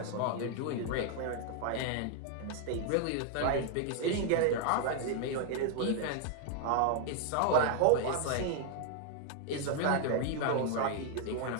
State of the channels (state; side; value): different; both; correlation 0.00